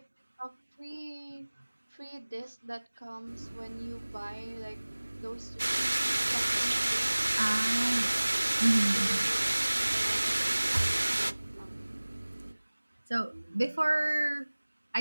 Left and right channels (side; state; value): both; inverted; correlation -1.00